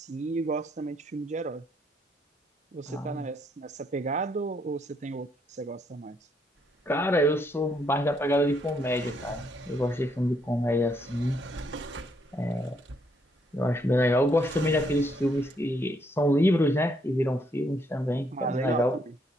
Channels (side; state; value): both; normal; correlation 0.72